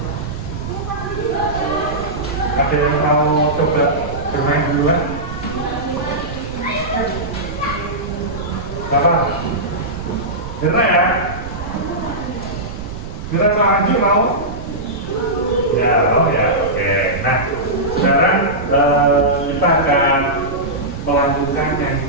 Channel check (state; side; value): noise; right; rumble, 10 dB below the sound